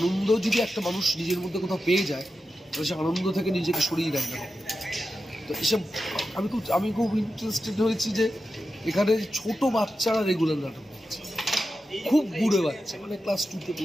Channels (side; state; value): both; normal; correlation 0.90